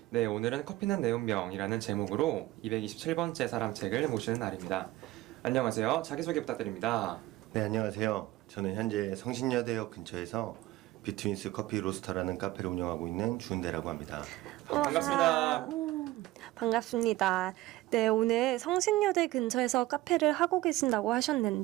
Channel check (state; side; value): quieter; left; 17.5 dB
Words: 네, 오늘은 커피는 내 운명이라는 제목으로 227번째 사람책을 모시는 날입니다. 안녕하세요. 자기소개 부탁드립니다. 네, 안녕하세요. 저는 현재 성신여대역 근처에서 비트윈스 커피 로스터라는 카페를 운영하고 있는 주은대라고 합니다. 반갑습니다. 반갑습니다. 네, 오늘 성신여대 근처에서 카페를 하고 계신다고